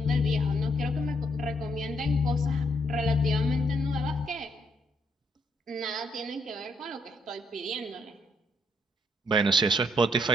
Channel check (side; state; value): both; normal; correlation 0.72